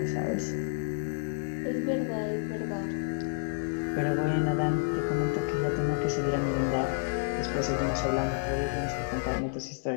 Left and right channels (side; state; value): right; silent; digital silence